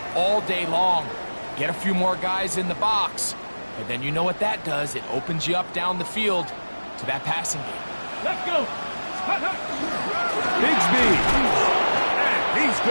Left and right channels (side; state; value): both; inverted; correlation -1.00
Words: all day long. Get a few more guys in the box, and then you know what that does. It opens you up down the field to that passing game. Let's go. Bigsby. And he's